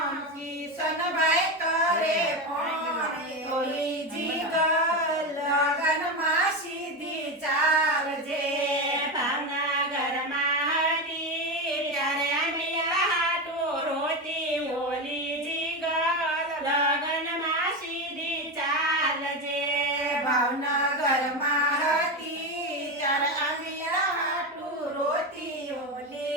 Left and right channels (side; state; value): both; normal; correlation 0.16